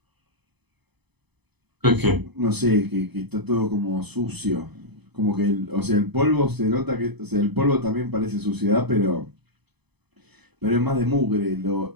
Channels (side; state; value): left; late; 0.99 ms